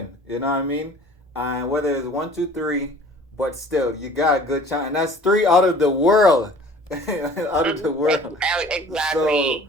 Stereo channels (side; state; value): both; normal; correlation 0.48